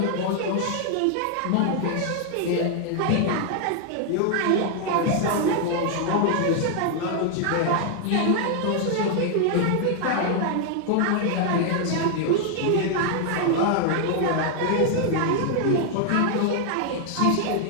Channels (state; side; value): different; both; correlation 0.00